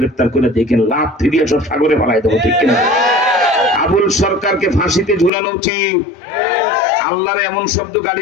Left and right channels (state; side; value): drops out; right; at 5.3 s